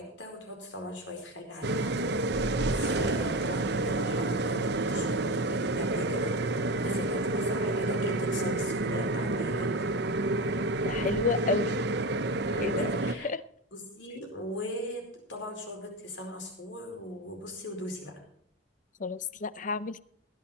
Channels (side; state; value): both; normal; correlation 0.21